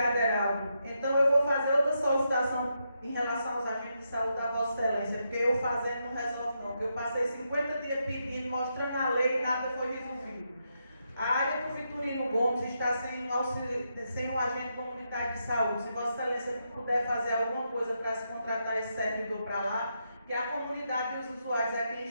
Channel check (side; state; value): both; inverted; correlation -0.82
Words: Heraldo. Então eu vou fazer outra solicitação em relação aos agentes de saúde da Vossa Excelência, porque eu fazendo não resolve não, porque eu passei 50 dias pedindo, mostrando a lei e nada foi resolvido. A área do Vitorino Gomes está sem um agente comunitário de saúde. Se Vossa Excelência puder fazer alguma coisa para se contratar esse servidor para lá, que a comunidade e os usuários é quem